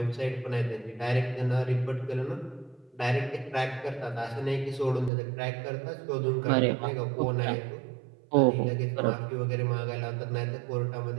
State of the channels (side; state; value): left; drops out; at 5.1 s